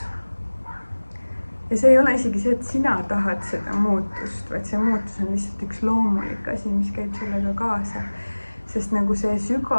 Ja see ei ole isegi see, et sina tahad seda muutust, vaid see muutus on lihtsalt üks loomulik asi, mis käib sellega kaasa. Sest nagu see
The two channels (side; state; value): both; inverted; correlation -1.00